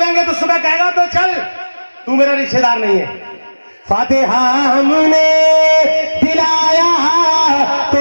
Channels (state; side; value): inverted; both; correlation -1.00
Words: तो सुबह कहेगा तो चल, तू मेरा रिश्तेदार नहीं है। फातिहा हमने दिलाया